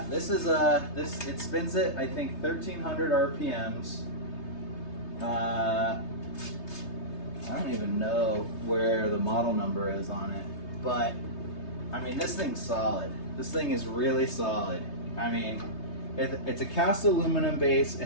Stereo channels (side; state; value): right; late; 3.3 ms